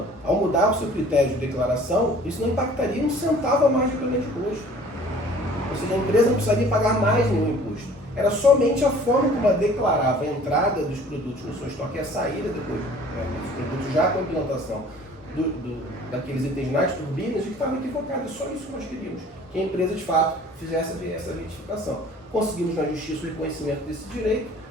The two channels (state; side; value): normal; both; correlation 0.50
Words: ao mudar o seu critério de declaração, isso não impactaria um centavo a mais de pagamento de imposto. Ou seja, a empresa não precisaria pagar mais nenhum imposto. Era somente a forma como ela declarava a entrada dos produtos no seu estoque e a saída depois, né, dos produtos já com a implantação daqueles itens nas turbinas, que estava equivocada. Só isso que nós queríamos, que a empresa de fato fizesse essa retificação. Conseguimos na justiça o reconhecimento desse direito,